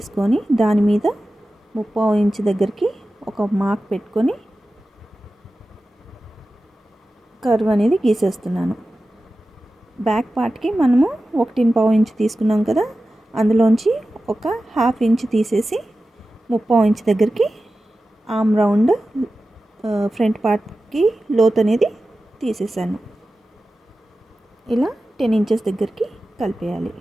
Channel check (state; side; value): normal; both; correlation 0.94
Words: దాని మీద 3/4 ఇంచు దగ్గరికి ఒక మార్క్ పెట్టుకొని కర్వ్ అనేది గీసేస్తున్నాను. బ్యాక్ పార్ట్కి మనము 1.25 ఇంచు తీసుకున్నాం కదా, అందులోంచి ఒక 1/2 ఇంచు తీసేసి 3/4 ఇంచు దగ్గరికి ఆర్మ్ రౌండ్ ఫ్రంట్ పార్ట్కి లోత్ అనేది తీసేసాను. ఇలా 10 ఇంచెస్ దగ్గరికి కలిపేయాలి.